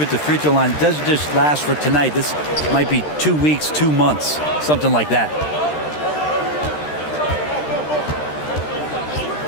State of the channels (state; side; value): late; right; 13 ms